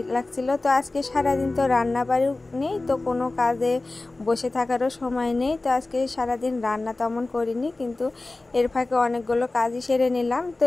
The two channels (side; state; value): right; quieter; 3.1 dB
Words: লাগছিল। তো আজকে সারাদিন তো রান্না বাড়িও নেই, তো কোনো কাজে বসে থাকারও সময় নেই। তো আজকে সারাদিন রান্না তেমন করিনি, কিন্তু এর ফাঁকে অনেকগুলো কাজই সেরে নিলাম। তো